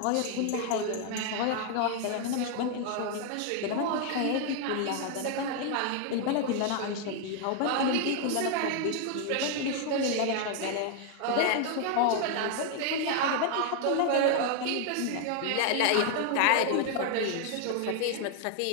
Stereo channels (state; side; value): different; both; correlation 0.00